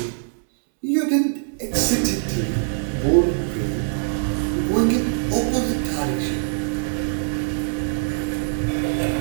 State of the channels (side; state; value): left; silent; digital silence